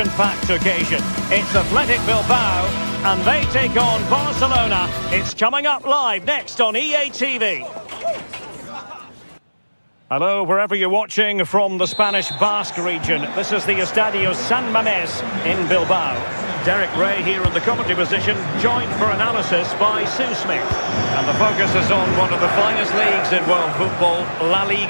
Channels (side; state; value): both; inverted; correlation -1.00